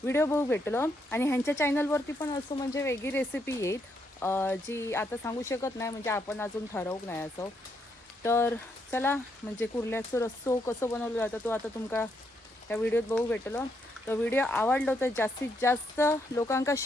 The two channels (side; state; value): both; normal; correlation 0.77